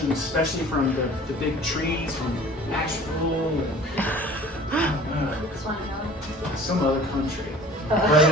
especially from the big trees from Nashville and some other country. But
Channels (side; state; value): both; normal; correlation 0.46